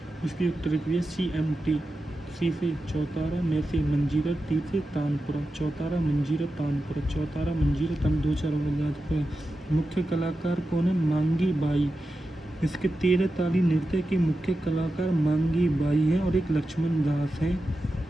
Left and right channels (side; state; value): both; normal; correlation 0.91